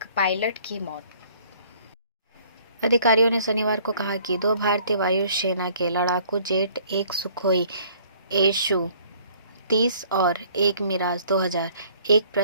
pilot की मौत। अधिकारियों ने शनिवार को कहा कि 2 भारतीय वायुसेना के लड़ाकू जेट, एक सुखोई SU-30 और एक मिराज 2000 एक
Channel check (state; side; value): inverted; both; correlation -0.57